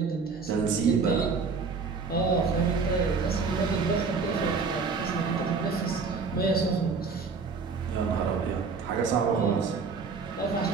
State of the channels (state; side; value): quieter; left; 4.9 dB